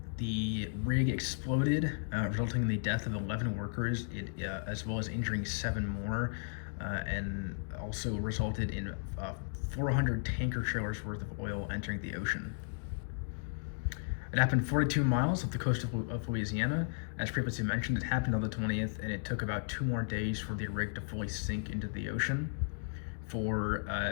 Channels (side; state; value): right; silent; digital silence